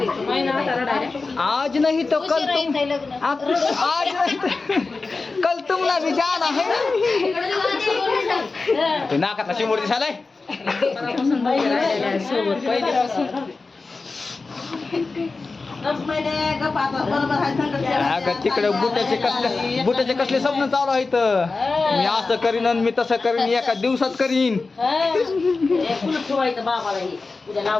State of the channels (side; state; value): right; quieter; 3.9 dB